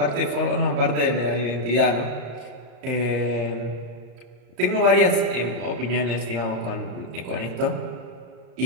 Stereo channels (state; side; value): late; left; 34 ms